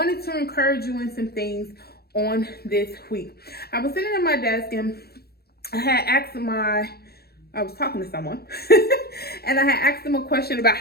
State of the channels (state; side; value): late; right; 0.46 ms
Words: to encourage you in some things on this week. I was sitting at my desk, and I was talking to someone and I had asked them a question about